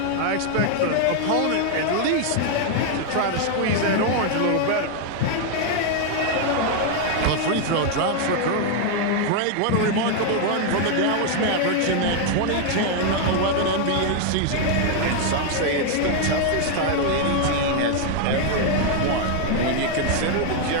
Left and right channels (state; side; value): different; both; correlation 0.00